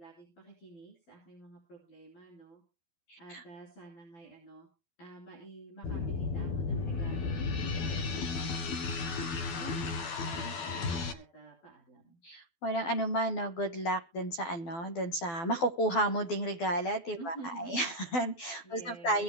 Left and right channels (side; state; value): right; late; 12 ms